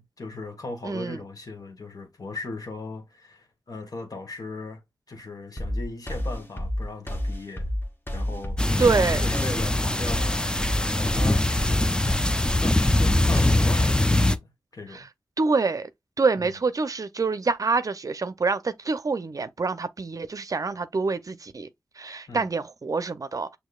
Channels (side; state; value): both; normal; correlation 0.77